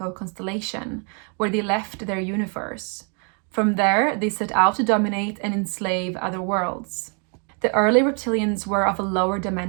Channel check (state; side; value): quieter; left; 38.7 dB